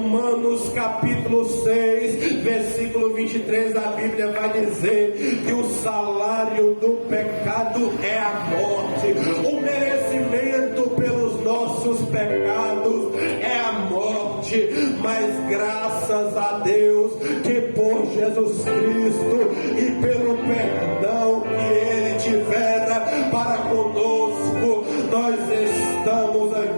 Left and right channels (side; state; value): both; inverted; correlation -1.00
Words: capítulo 6, versículo 23, a Bíblia vai dizer que o salário do pecado é a morte. O merecimento pelos nossos pecados é a morte, mas graças a Deus que por Jesus Cristo e pelo perdão que Ele tivera para conosco, nós estamos